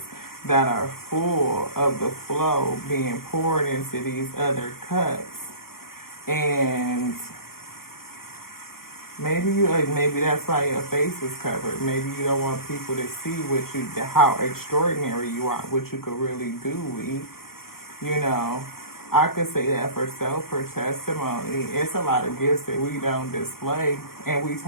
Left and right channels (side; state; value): right; late; 0.93 ms